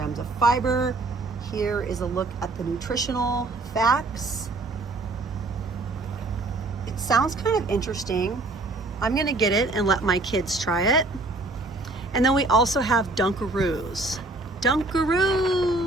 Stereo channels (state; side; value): quieter; left; 3.1 dB